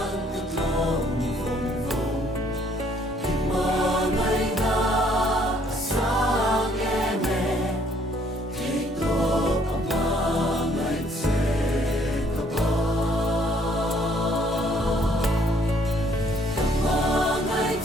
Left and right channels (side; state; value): both; normal; correlation 0.64